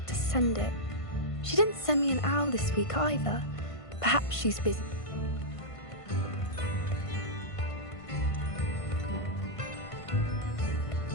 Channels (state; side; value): late; right; 1.5 ms